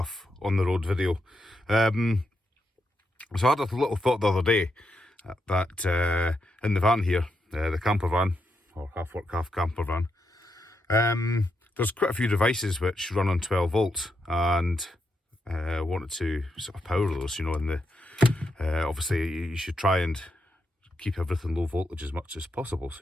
on the road video. So I had a little thought the other day that in the van here, the camper van, or half work half camper van, there's quite a few devices which run on 12 volts, and wanted to sort of power those, you know, in the obviously you should try and keep everything low voltage as much as possible, so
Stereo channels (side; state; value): both; normal; correlation 0.83